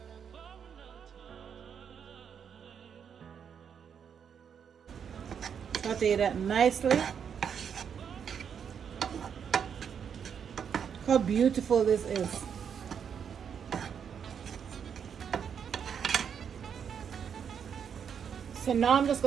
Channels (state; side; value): quieter; left; 7.5 dB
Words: Saute that nicely. How beautiful this is. So now I'm just